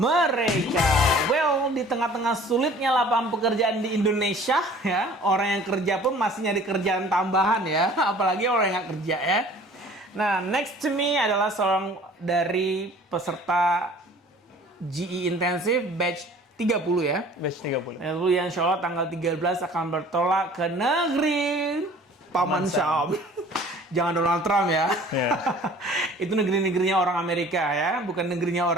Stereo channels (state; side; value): normal; both; correlation 0.49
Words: Well, di tengah-tengah sulitnya lapangan pekerjaan di Indonesia ya, orang yang kerja pun masih nyari kerjaan tambahan ya, apalagi orang yang nggak kerja ya. Nah, next to me adalah seorang dari peserta GE Intensive batch 30 ya. Batch 30. Lalu yang insya Allah tanggal 13 akan bertolak ke negeri Paman Syam. Jangan Donald Trump ya. Yeah. Itu negeri-negerinya orang Amerika ya, bukan negerinya